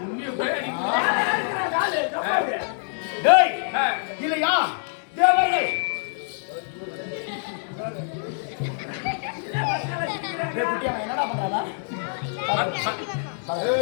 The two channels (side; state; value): right; silent; 58 dB below the other